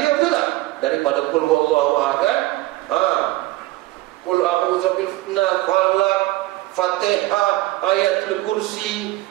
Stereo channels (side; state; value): left; quieter; 18.0 dB